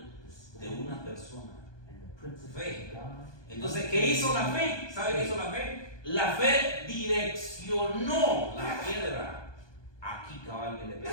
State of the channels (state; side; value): late; right; 1.2 ms